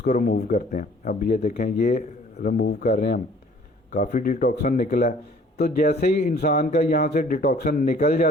रिमूव करते हैं। अब ये देखें, ये रिमूव कर रहे हैं हम, काफ़ी डिटॉक्सन निकला है। तो जैसे ही इंसान का यहाँ से डिटॉक्सन निकल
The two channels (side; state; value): both; normal; correlation 0.54